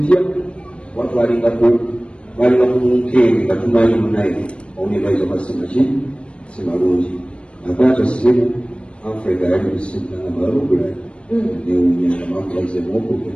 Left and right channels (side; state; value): right; late; 0.058 ms